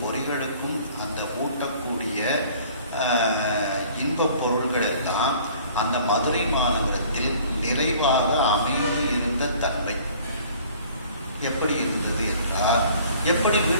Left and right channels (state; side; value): inverted; both; correlation -0.52